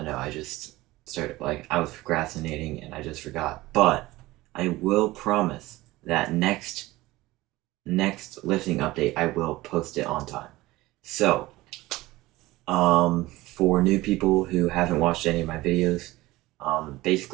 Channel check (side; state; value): left; quieter; 18.8 dB